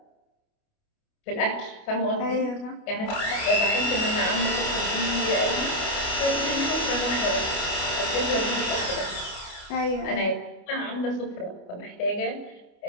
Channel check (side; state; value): right; late; 29 ms